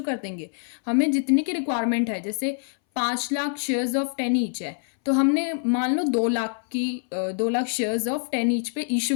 कर देंगे, हमें जितनी की रिक्वायरमेंट है। जैसे 5 लाख शेयर्स ऑफ 10 ईच है, तो हमने मान लो 2 लाख शेयर्स ऑफ 10 ईच पे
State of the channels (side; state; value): right; silent; 61 dB below the other